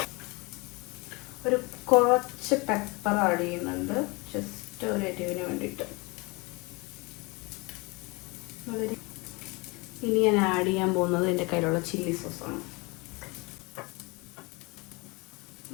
ഒരു കുറച്ച് പെപ്പർ ആഡ് ചെയ്യുന്നുണ്ട്, ജസ്റ്റ് ഒരു എരിവിന് വേണ്ടിയിട്ട്. ഇനി ഞാൻ ആഡ് ചെയ്യാൻ പോകുന്നത് എൻ്റെ കയ്യിലുള്ള ചില്ലി സോസാണ്.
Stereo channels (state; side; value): quieter; right; 27.1 dB